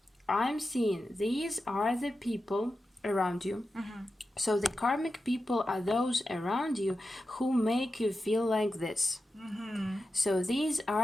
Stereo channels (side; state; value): both; normal; correlation 0.91